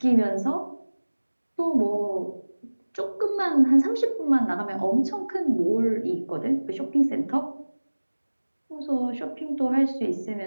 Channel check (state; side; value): inverted; both; correlation -1.00